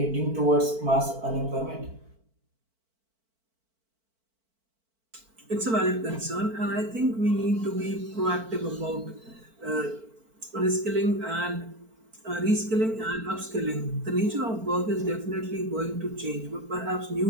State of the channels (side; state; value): left; late; 4.5 ms